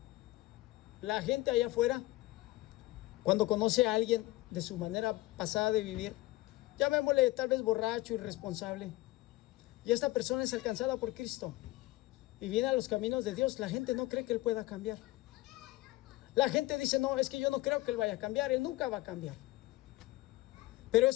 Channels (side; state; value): right; quieter; 18.5 dB